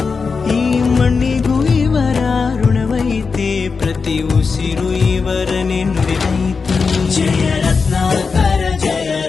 ಈ ಮಣ್ಣಿಗೂ ಇವರ ಋಣವೈತೆ, ಪ್ರತಿ ಉಸಿರು ಇವರನೆ ನುಡಿದೈತೆ. ಜಯ ರತ್ನಾಕರ ಜಯ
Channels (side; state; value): right; quieter; 5.0 dB